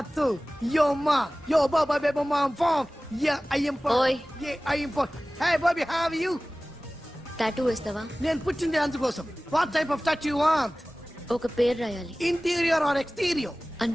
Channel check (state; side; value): normal; both; correlation 0.98